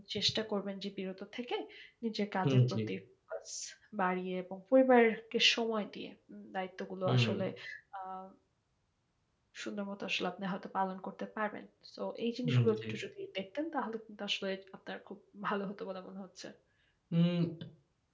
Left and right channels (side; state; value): both; identical; correlation 1.00